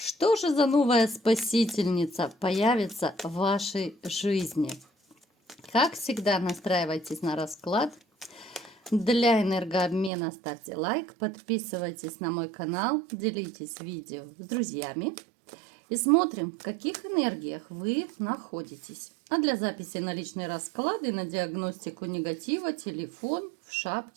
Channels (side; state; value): left; drops out; at 10.1 s